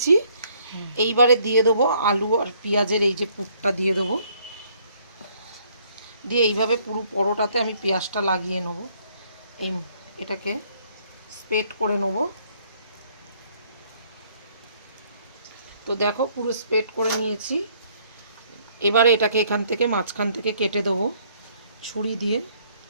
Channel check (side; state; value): both; inverted; correlation -0.64